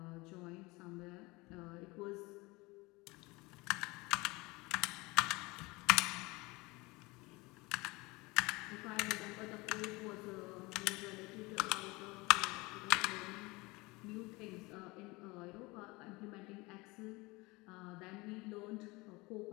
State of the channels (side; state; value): right; quieter; 23.7 dB